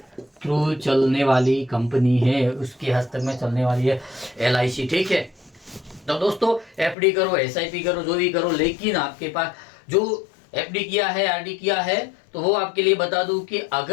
थ्रू चलने वाली कंपनी है, उसके हस्तक में चलने वाली है LIC। ठीक है, तो दोस्तों FD करो, SIP करो, जो भी करो, लेकिन आपके पास जो FD किया है, RD किया है, तो वो आपके लिए बता दूं कि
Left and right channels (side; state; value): right; drops out; at 7.0 s